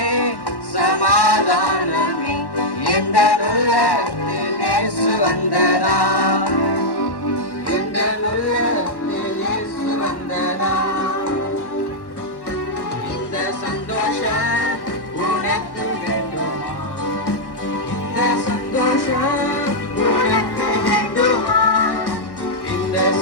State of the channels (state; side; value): late; right; 1.1 ms